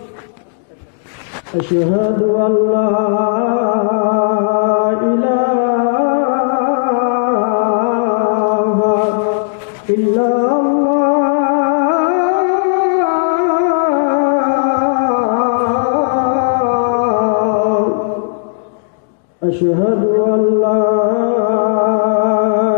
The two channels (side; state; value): right; silent; digital silence